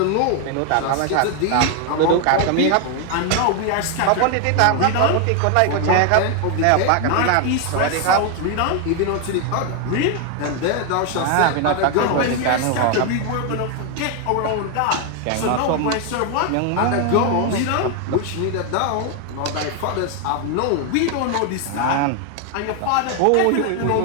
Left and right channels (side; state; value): both; different; correlation 0.01